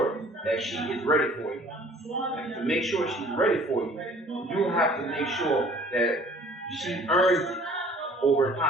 that she is ready for you. And to make sure she's ready for you, you have to make sure that she earns it over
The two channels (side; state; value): both; normal; correlation 0.52